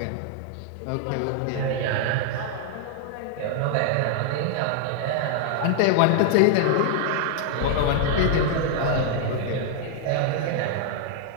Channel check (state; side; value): different; both; correlation 0.00